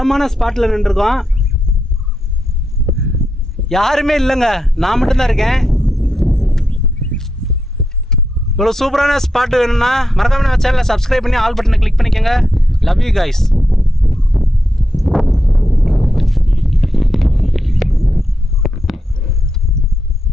ஸ்பாட்டில் நின்றுருக்கோம். யாருமே இல்லைங்க, நான் மட்டும்தான் இருக்கேன். இவ்வளோ சூப்பரான ஸ்பாட்டு வேணும்னா மறக்காம நம்ம சேனலை சப்ஸ்கிரைப் பண்ணி ஆல் பட்டனை கிளிக் பண்ணிக்கோங்க. Love you guys.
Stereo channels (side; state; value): both; normal; correlation 0.85